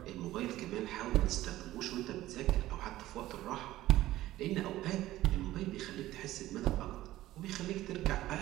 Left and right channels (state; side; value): quieter; left; 15.4 dB